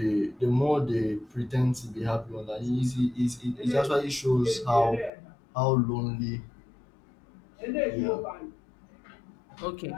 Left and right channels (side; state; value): right; drops out; at 5.1 s